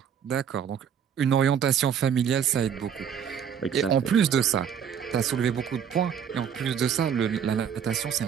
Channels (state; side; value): quieter; left; 8.1 dB